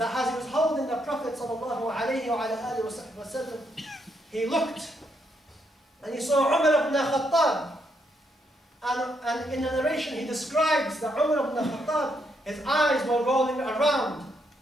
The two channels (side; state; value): both; normal; correlation 0.77